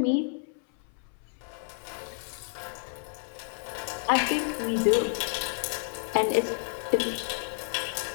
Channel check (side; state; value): right; silent; 58 dB below the other